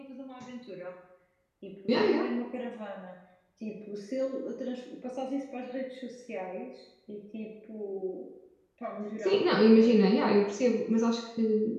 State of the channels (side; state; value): both; identical; correlation 1.00